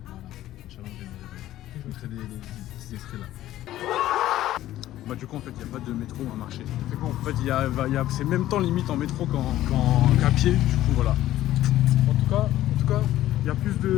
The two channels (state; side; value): quieter; right; 14.0 dB